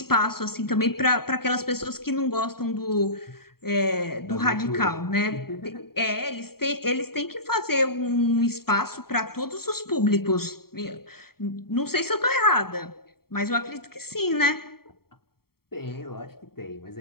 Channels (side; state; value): right; late; 0.94 ms